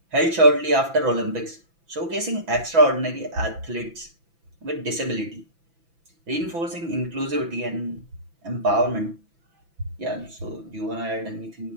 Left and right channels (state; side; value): late; left; 6.0 ms